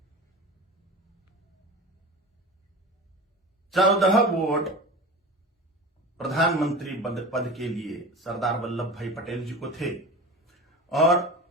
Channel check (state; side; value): normal; both; correlation 0.32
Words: 14 वोट प्रधानमंत्री पद के लिए सरदार वल्लभ भाई पटेल जी को थे और